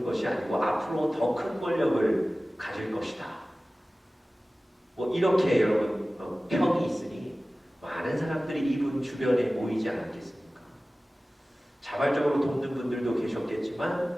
것이 아니고 앞으로 더 큰 권력을 가질 것이다. 뭐 이렇게 여러분 평이 있으니 많은 사람들이 이분 주변에 모이지 않았겠습니까? 자발적으로 돕는 분들도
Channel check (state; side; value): normal; both; correlation 0.97